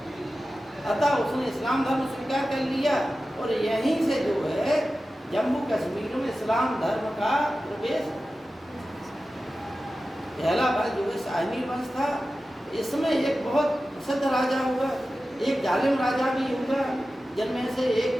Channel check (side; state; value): both; normal; correlation 0.94